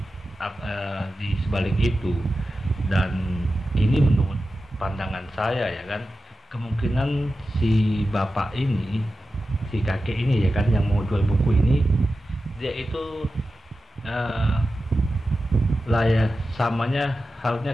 di sebalik itu. Dan ini menurut pandangan saya ya kan, kemungkinan si bapak ini, si kakek ini ya kan, yang mau jual buku ini, dia itu samanya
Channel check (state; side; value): normal; both; correlation 0.93